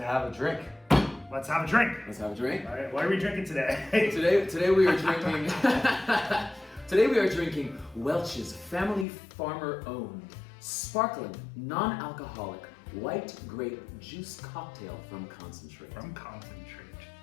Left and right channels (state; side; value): drops out; right; at 9.1 s